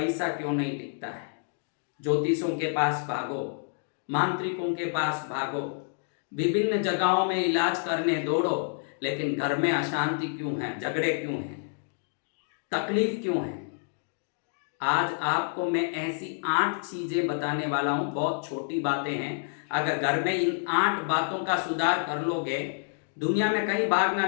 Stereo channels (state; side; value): silent; right; digital silence